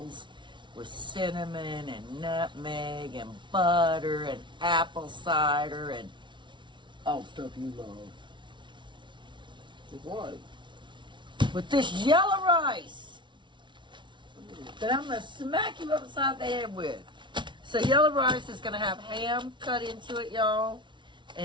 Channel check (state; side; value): late; left; 0.24 ms